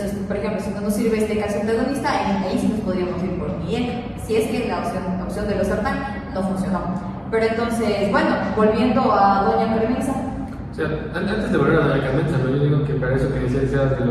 por ejemplo, si no nos sirve este calcio antagonista, ahí sí nos podríamos ir por un IECA, si es que la opción de losartán no funcionó. Pero entonces, bueno, volviendo a doña Carmenza. O sea, antes de volver a doña Carmenza, ¿no? Yo digo que para eso que decías de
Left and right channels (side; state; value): both; identical; correlation 1.00